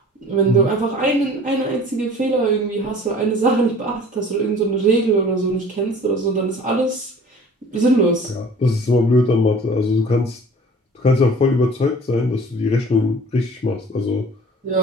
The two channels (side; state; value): both; normal; correlation 0.47